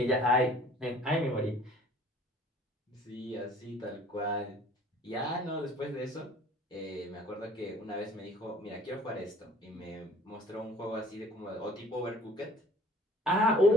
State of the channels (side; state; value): both; normal; correlation 0.52